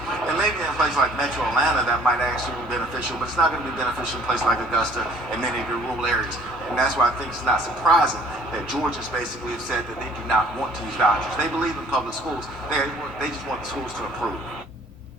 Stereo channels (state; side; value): normal; both; correlation 0.56